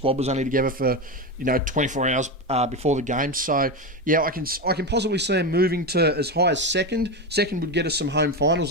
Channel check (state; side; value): normal; both; correlation 0.16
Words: was only together for, 24 hours before the game. So, yeah, I can possibly see them moving to as high as second. Second would get us some home finals,